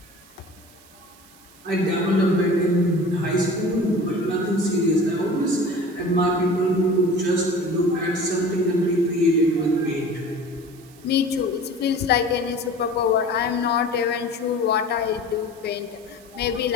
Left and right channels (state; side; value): noise; right; hiss, 25 dB below the sound